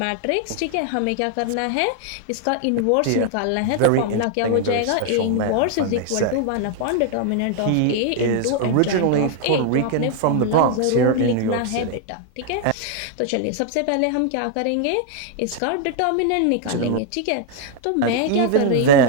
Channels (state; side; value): different; both; correlation 0.00